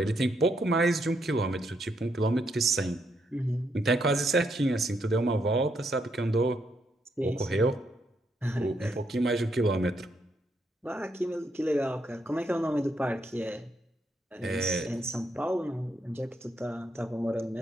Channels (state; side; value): normal; both; correlation 0.77